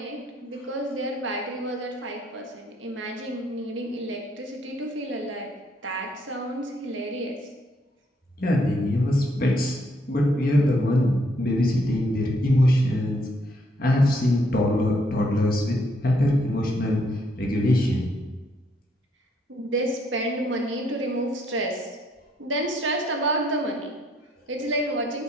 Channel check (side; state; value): both; normal; correlation 0.70